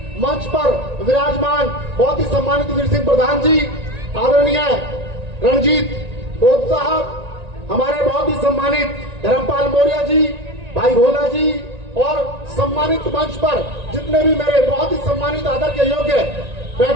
मंच पर विराजमान बहुत ही सम्मानित वीर सिंह प्रधान जी, आदरणीय रणजीत बोध साहब, हमारे बहुत ही सम्मानित धर्मपाल मौर्य जी, भाई भोला जी और सम्मानित मंच पर जितने भी मेरे बहुत ही सम्मानित आदर के योग्य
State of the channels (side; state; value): left; late; 1.9 ms